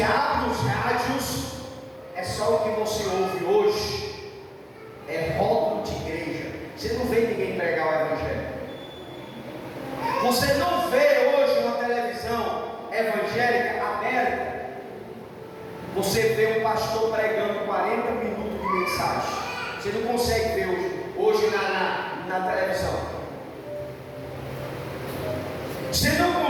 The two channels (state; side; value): identical; both; correlation 1.00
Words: abre os rádios, é só o que você ouve hoje. É rótulo de igreja. Você não vê ninguém pregar o evangelho. Você não vê hoje uma televisão evangélica aberta. Você vê um pastor pregando 40 minutos de mensagem. Você não consegue ver hoje na televisão. Você não